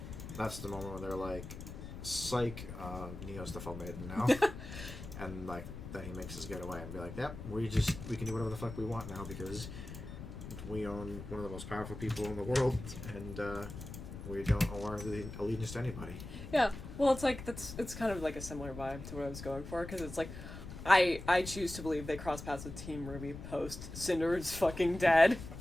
that's the moment where they're like, psych, Neo's the Fall Maiden now. And like then he makes his getaway and be like, yep, we can do whatever the fuck we want now because we own one of the most powerful people in the world, and we don't owe our allegiance to anybody. Yeah, well, it's kind of like a similar vibe to what I was going for, because it's like, I choose to believe they cross paths with Team RWBY post Cinder is fucking dead.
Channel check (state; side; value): noise; left; rumble, 10 dB below the sound